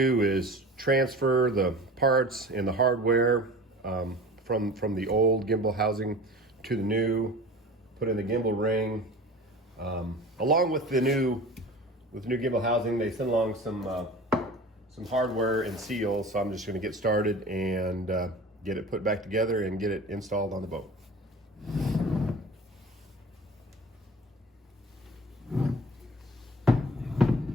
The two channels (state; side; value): normal; both; correlation 0.39